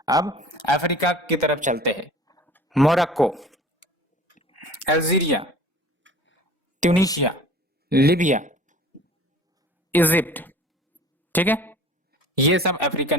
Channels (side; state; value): both; normal; correlation 0.45